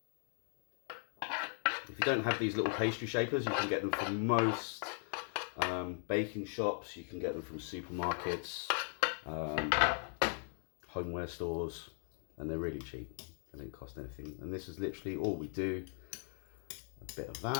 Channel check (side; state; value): right; silent; 52 dB below the other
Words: If you don't have these little pastry shapers, you can get them from most baking shops, you can get them from supermarkets, homeware stores, and they're really cheap. They don't cost anything. And this is literally all we do. A bit of